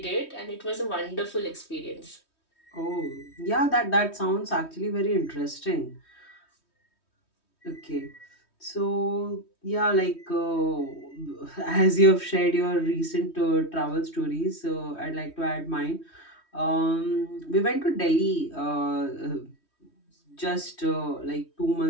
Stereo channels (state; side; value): late; right; 3.2 ms